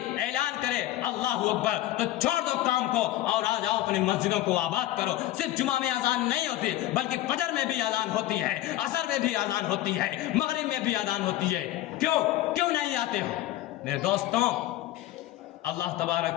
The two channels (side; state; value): right; quieter; 14.9 dB